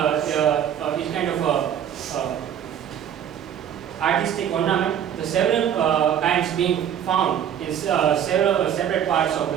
of artistic ornament, the several kinds being found in several separate parts of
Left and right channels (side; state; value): left; quieter; 9.4 dB